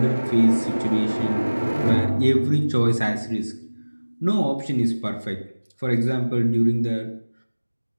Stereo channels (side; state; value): both; inverted; correlation -1.00